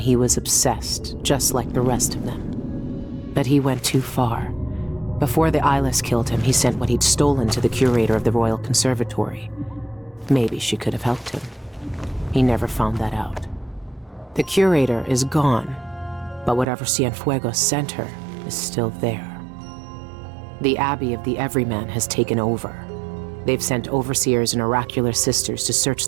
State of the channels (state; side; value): drops out; left; at 16.7 s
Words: he was obsessed, just like the rest of them. But he went too far. Before the Eyeless killed him, he sent what he'd stolen to the curator of the Royal Conservatory. Maybe she could have helped him. He never found that out. The curator is gone, but whatever Cienfuegos sent her is still there. The Abbey of the Everyman has taken over. They've sent overseers and oracular sisters to search